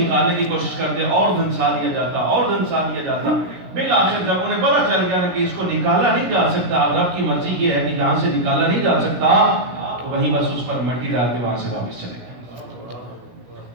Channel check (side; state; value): left; late; 17 ms